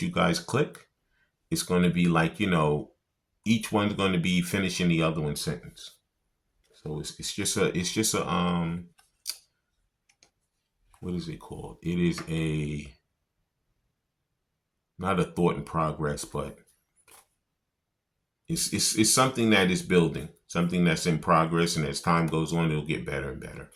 you guys click, it's going to be like, you know, each one's going to be finishing the other one's sentence. So it's just a what is it called? It is a, not a thought in progress, but it's something that is building, something that's in progress, and as time goes on, it'll get better and better.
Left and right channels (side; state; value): both; identical; correlation 1.00